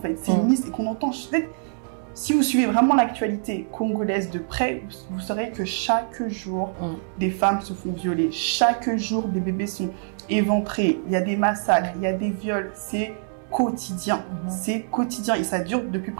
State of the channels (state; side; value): silent; left; digital silence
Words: c'est une liste et qu'on entend. Si vous suivez vraiment l'actualité congolaise de près, vous saurez que chaque jour, des femmes se font violer, chaque jour, des bébés sont éventrés, il y a des massacres, il y a des viols, c'est quotidien, c'est quotidien et ça dure depuis